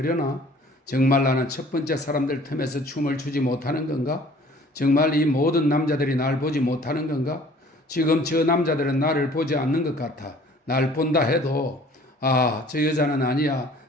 정말 나는 첫 번째 사람들 틈에서 춤을 추지 못하는 건가? 정말 이 모든 남자들이 날 보지 못하는 건가? 지금 저 남자들은 나를 보지 않는 것 같아. 날 본다 해도 저 여자는 아니야.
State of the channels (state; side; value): normal; both; correlation 0.52